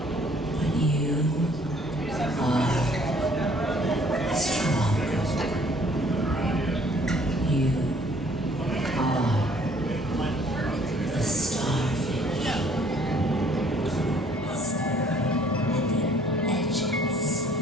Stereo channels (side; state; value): both; normal; correlation 0.59